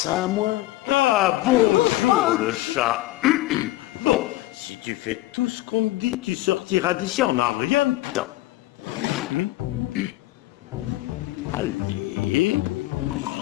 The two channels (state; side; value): quieter; right; 17.7 dB